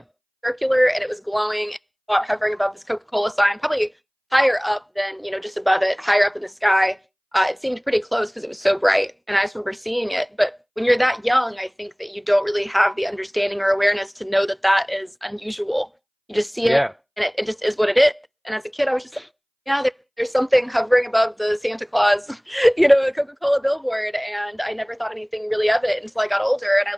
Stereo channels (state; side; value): identical; both; correlation 1.00